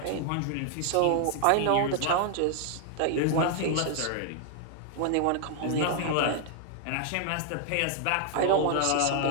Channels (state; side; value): different; both; correlation 0.00